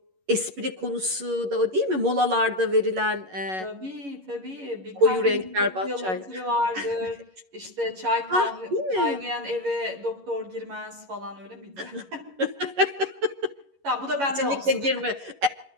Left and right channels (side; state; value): left; late; 11 ms